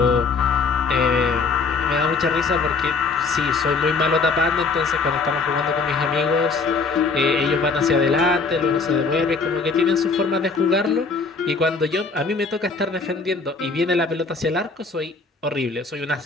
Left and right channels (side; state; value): right; quieter; 4.3 dB